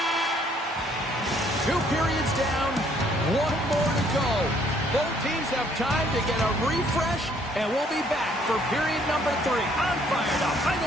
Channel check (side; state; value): both; normal; correlation 0.64